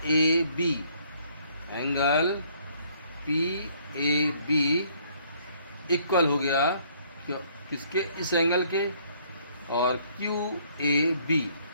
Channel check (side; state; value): both; inverted; correlation -0.63